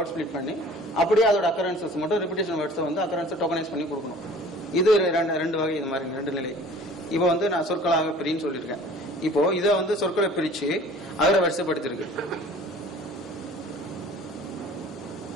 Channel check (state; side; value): normal; both; correlation 0.48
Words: ஸ்பிளிட் பண்ணி அப்படியே அதோட அக்கரன்சஸ் மட்டும் ரிப்பிட்டேஷன் வேர்ட்ஸை வந்து அக்கரன்ஸை டோக்கனைஸ் பண்ணி கொடுக்கணும். இது 2 வகை, இது மாதிரி 2 நிலை. இப்போ வந்து நான் சொற்களாக பிரின்னு சொல்லியிருக்கேன். இப்போ இதை வந்து சொற்களை பிரிச்சு அகர வரிசைப்படுத்திருக்கு.